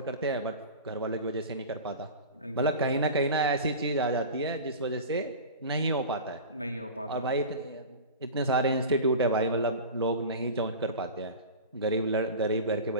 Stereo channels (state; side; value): inverted; both; correlation -0.33